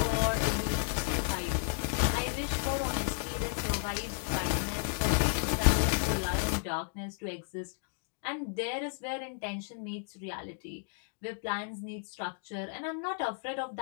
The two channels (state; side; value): silent; right; 56 dB below the other